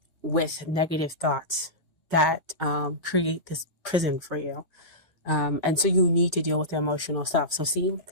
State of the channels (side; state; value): both; normal; correlation -0.17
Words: with negative thoughts that create this prison for you. And so you need to deal with the emotional stuff. So see,